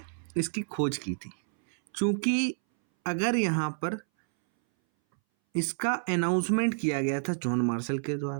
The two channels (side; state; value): left; silent; 59 dB below the other